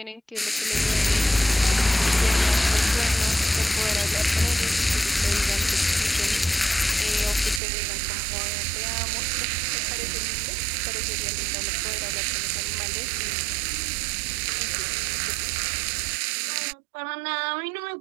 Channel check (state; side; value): drops out; left; at 7.6 s